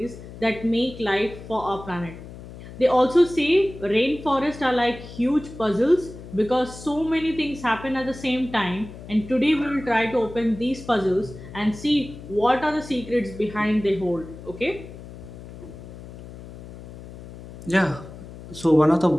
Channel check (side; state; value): left; noise; hum, 15 dB below the sound